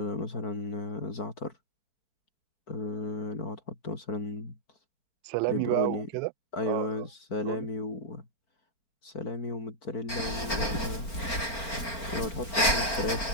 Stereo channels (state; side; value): late; right; 4.4 ms